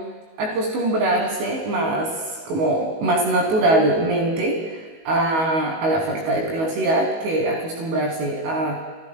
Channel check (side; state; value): left; late; 19 ms